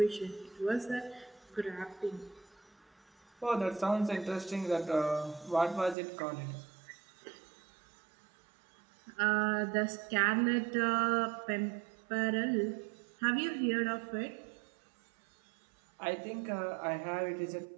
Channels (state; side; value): drops out; left; at 6.0 s